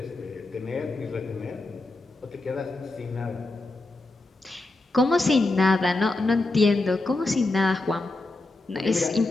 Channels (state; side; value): quieter; right; 3.0 dB